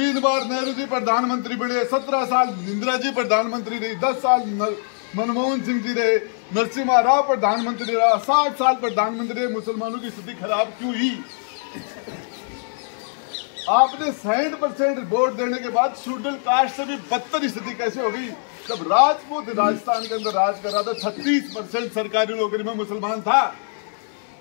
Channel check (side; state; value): right; silent; digital silence